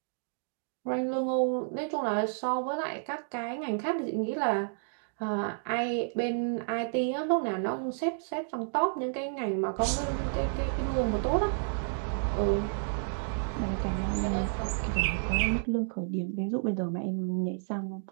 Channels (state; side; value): silent; left; digital silence